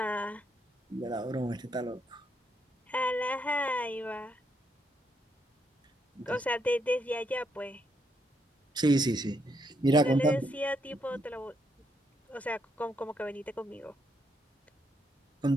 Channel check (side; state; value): both; normal; correlation 0.76